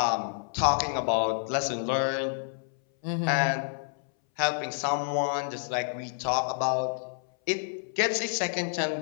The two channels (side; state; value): right; silent; 59 dB below the other